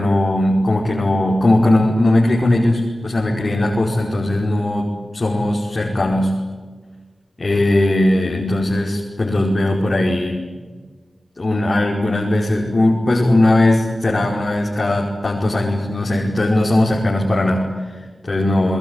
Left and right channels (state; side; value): normal; both; correlation 0.95